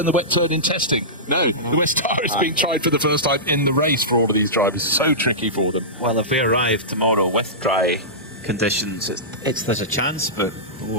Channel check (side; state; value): both; normal; correlation -0.17